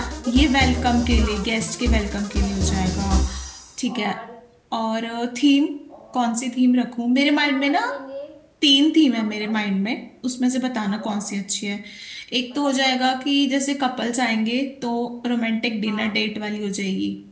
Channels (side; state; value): both; identical; correlation 1.00